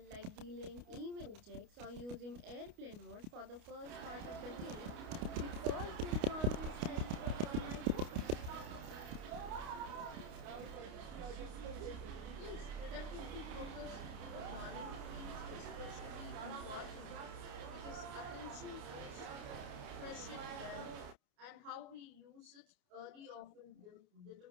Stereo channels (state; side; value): late; left; 29 ms